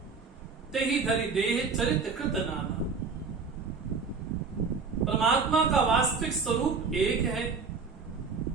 तेहि धरि देह चरित कृत नाना। परमात्मा का वास्तविक स्वरूप एक है।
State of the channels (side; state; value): left; quieter; 4.9 dB